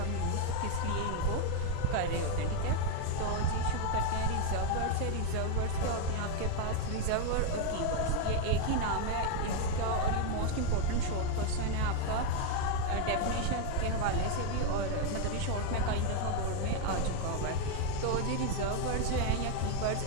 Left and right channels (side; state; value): both; different; correlation 0.01